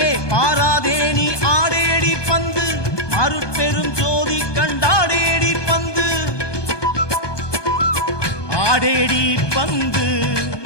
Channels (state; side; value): late; right; 1.2 ms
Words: பாராதே நீ ஆடேடி பந்து, அருட்பெரும் ஜோதி கண்டாடேடி பந்து. ஆடேடி பந்து,